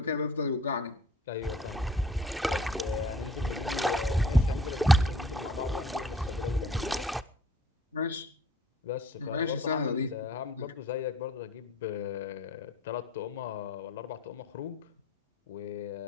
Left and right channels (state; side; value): normal; both; correlation 0.54